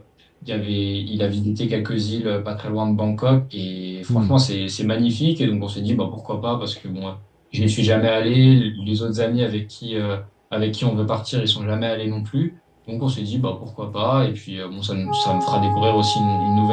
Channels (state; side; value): identical; both; correlation 1.00